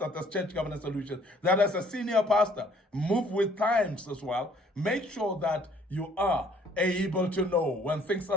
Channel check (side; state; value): both; normal; correlation 0.59